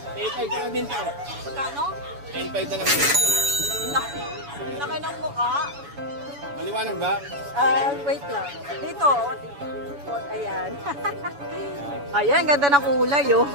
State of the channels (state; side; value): late; left; 7.0 ms